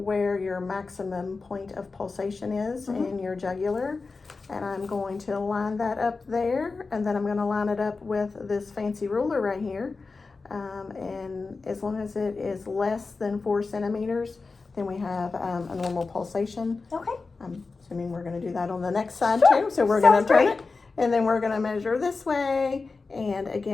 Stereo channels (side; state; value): right; quieter; 4.1 dB